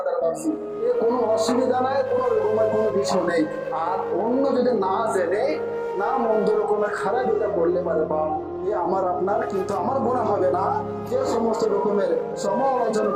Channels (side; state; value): both; identical; correlation 1.00